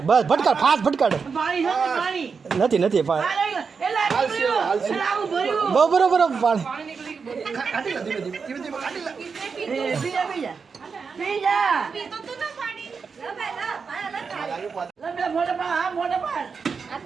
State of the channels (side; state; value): left; quieter; 5.4 dB